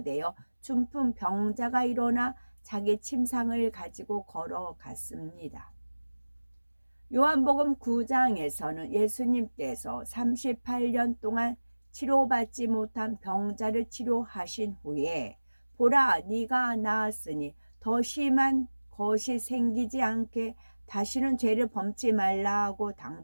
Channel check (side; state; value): both; inverted; correlation -1.00